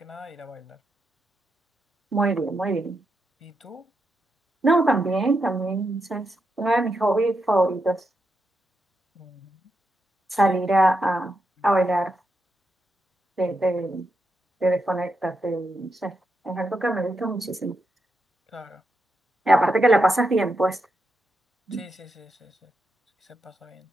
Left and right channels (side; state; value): both; normal; correlation 0.84